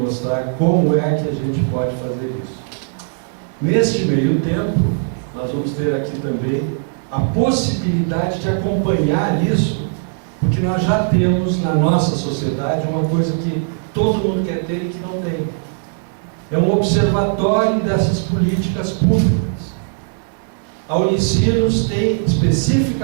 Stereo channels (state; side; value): silent; left; digital silence